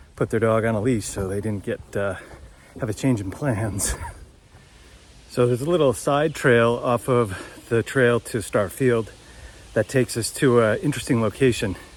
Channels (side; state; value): both; identical; correlation 1.00